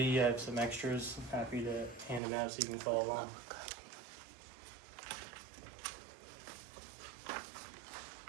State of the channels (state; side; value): drops out; left; at 2.2 s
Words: I have some extras. I'm happy to hand them out so you can follow along.